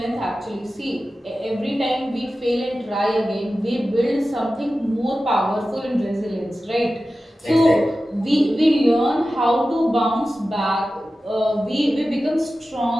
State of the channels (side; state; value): both; normal; correlation 0.94